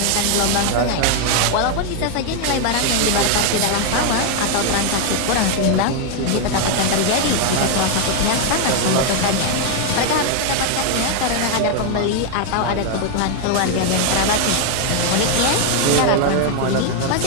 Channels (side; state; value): both; different; correlation 0.00